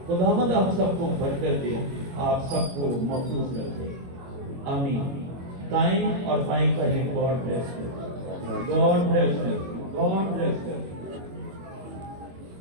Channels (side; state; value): left; late; 23 ms